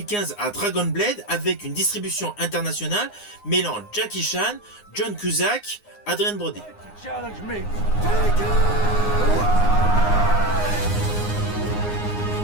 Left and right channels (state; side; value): late; right; 9.7 ms